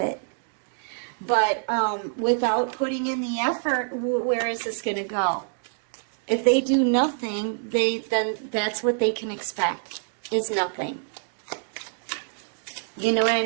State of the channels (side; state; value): left; silent; digital silence